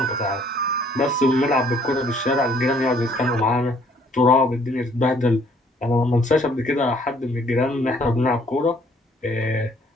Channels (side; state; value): both; normal; correlation 0.62